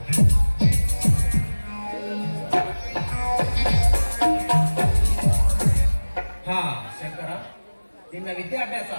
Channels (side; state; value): both; inverted; correlation -1.00